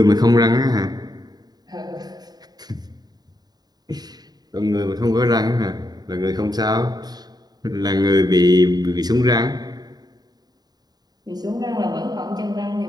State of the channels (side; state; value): left; late; 0.19 ms